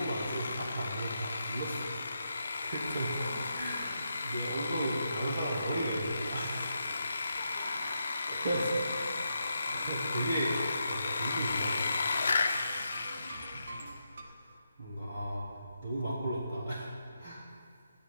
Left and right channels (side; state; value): both; inverted; correlation -0.84